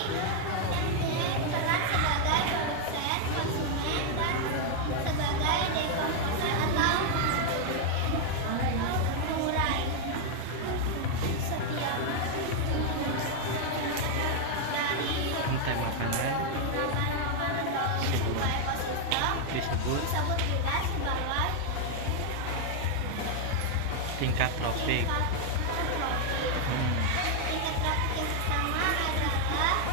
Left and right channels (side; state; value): both; different; correlation 0.00